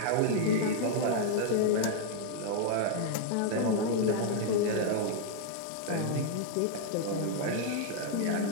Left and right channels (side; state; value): both; different; correlation 0.00